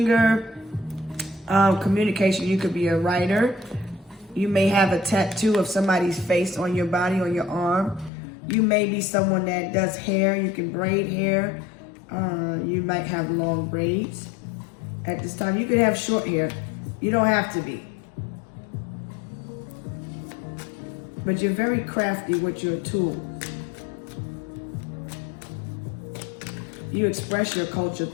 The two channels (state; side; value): drops out; right; at 8.1 s